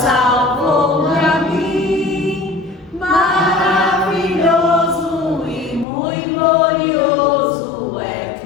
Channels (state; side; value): drops out; right; at 5.9 s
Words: a mim. Maravilhoso e muito glorioso é